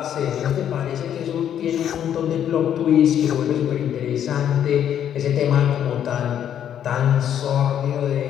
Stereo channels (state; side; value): quieter; right; 9.7 dB